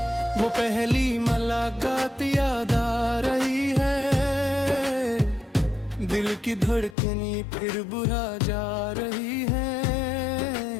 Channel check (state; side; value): drops out; right; at 7.0 s